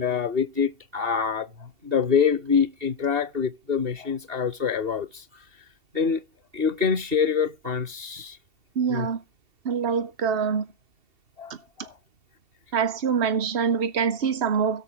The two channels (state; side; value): late; left; 2.7 ms